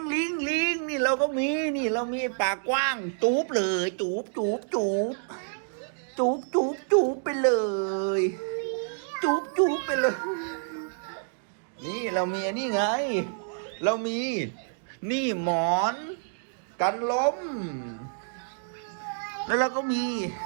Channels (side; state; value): left; silent; digital silence